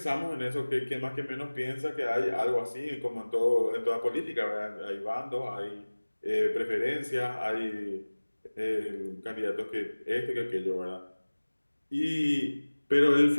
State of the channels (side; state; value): both; inverted; correlation -1.00